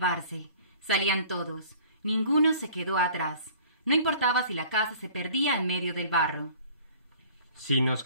Salían todos. Ninguno se quedó atrás. No importaba si la casa se perdía en medio del barro. Si nos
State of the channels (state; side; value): inverted; both; correlation -0.49